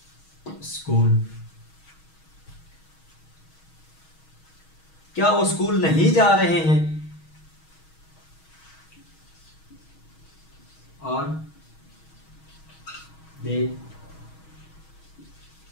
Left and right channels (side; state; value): right; late; 6.3 ms